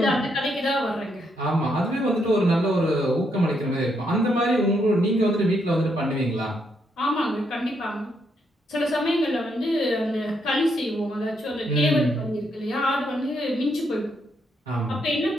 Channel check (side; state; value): both; normal; correlation 0.76